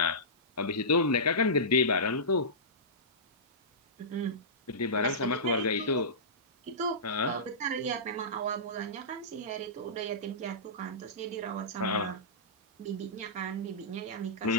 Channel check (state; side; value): normal; both; correlation -0.18